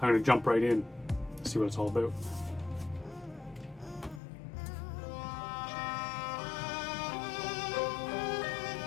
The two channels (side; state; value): right; drops out; at 4.2 s